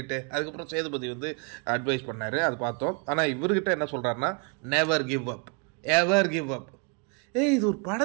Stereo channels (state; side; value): quieter; left; 34.5 dB